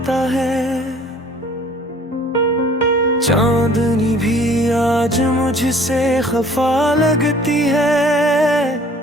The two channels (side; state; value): both; normal; correlation 0.53